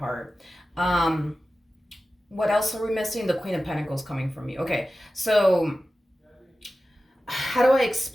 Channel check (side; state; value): both; normal; correlation 0.95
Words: What else are we missing? The Queen of Pentacles coming from you. Okay, so how do I